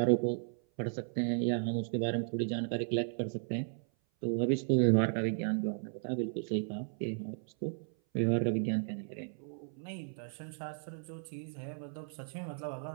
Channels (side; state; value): left; silent; 54 dB below the other